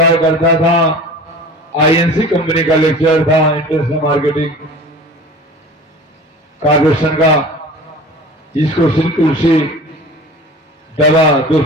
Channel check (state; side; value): normal; both; correlation 0.40